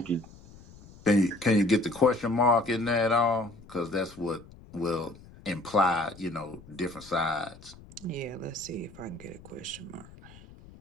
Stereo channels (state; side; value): noise; left; rumble, 21 dB below the sound